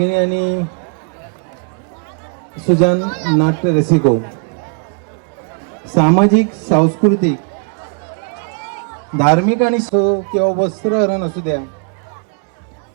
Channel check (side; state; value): left; quieter; 39.4 dB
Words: आणि सुजान नाट्य रसिको, सामाजिक, सांस्कृतिक, धार्मिक आणि किंवा वस्त्रहरण असू द्या